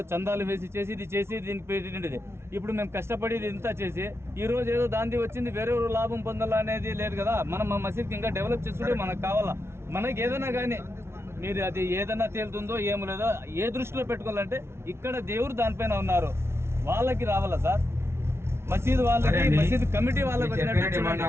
చందాలు వేసి చేసి దీనికి పెట్టిండేది. ఇప్పుడు మేము కష్టపడి ఇంత చేసి ఈ రోజు ఏదో దాంది వచ్చింది వేరే లాభం పొందాలా అనేది లేదు కదా. మనం మా మసీద్కి ఇంకా డెవలప్ చేసుకుంటే మనకు కావాలా. మనకి ఏదైనా కానీ మీరు అది ఏదైనా తేలుతుందో ఏమో లేదో ఏ దృష్టిలో పెట్టుకోవాలంటే ఇక్కడ దేవుడు దానిపైన ఉన్నారు, వాళ్ళకి రావాలా సార్. మసీద్ వాళ్ళకి మసీద్ కమిటీ వాళ్ళకి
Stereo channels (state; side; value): late; left; 0.12 ms